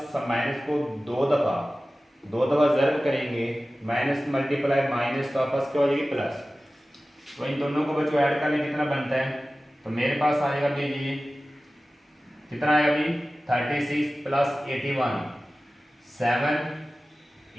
माइनस को दो दफ़ा ज़र्ब करेंगे, माइनस मल्टीप्लाई माइनस, तो आपस क्या हो जाएगी प्लस। तो इन दोनों को बच्चों ऐड कर लें, कितना बनता है, तो मेरे पास आएगा अभी ये कितना आएगा अभी 36 प्लस 81, 7,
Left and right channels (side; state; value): both; normal; correlation 0.96